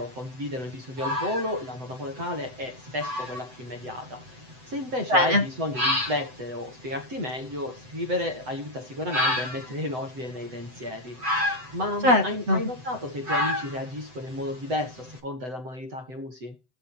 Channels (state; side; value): late; left; 7.9 ms